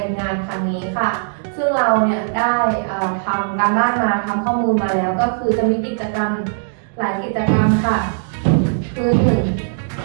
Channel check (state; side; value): silent; left; digital silence